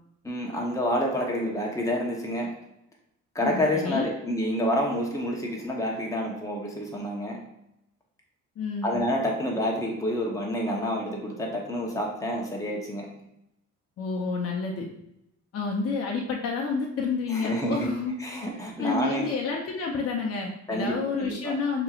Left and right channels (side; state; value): both; normal; correlation 0.37